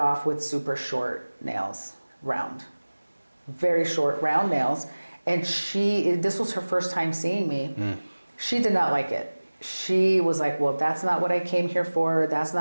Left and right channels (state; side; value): inverted; both; correlation -1.00